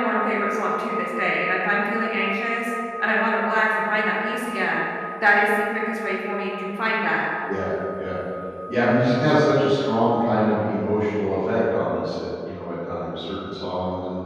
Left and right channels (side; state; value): both; identical; correlation 1.00